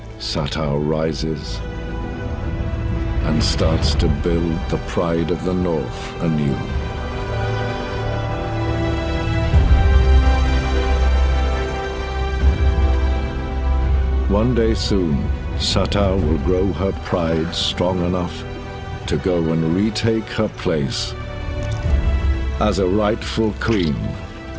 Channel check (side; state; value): both; identical; correlation 1.00